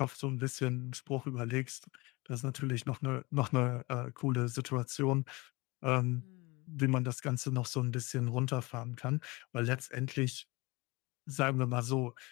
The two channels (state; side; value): quieter; right; 24.2 dB